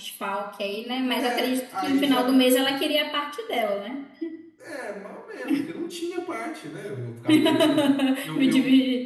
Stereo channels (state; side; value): identical; both; correlation 1.00